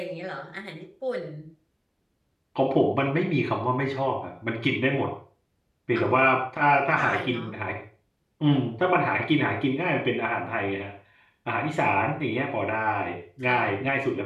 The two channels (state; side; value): identical; both; correlation 1.00